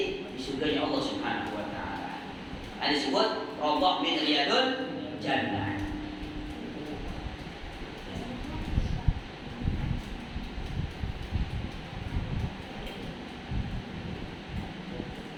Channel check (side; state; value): both; identical; correlation 1.00